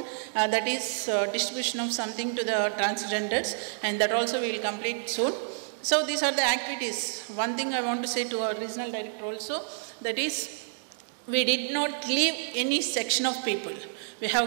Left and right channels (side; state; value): left; silent; 59 dB below the other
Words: that is distribution of something to the transgenders, and that also we will complete soon. So these are the activities. One thing I want to say to our regional director also, that is, we did not leave any section of people. We